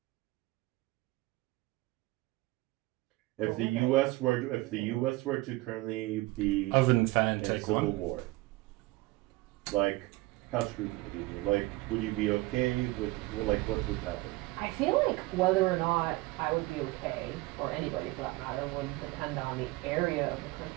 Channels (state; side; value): quieter; left; 20.7 dB